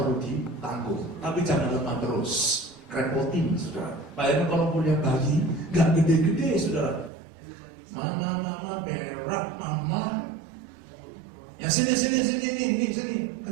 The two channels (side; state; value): left; drops out; at 7.1 s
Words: ditanggung, tapi jangan lemah terus. Repotin, saudara. Bayangkan kalau punya bayi, gak gede-gede, saudara. Mama, berak, mama. Ya sini,